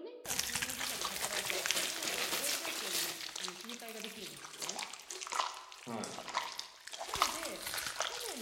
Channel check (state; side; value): identical; both; correlation 1.00